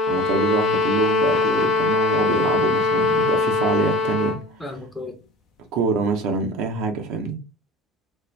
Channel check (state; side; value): normal; both; correlation 0.38